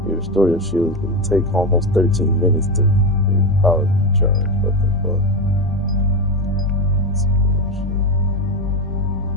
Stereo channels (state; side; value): normal; both; correlation 0.15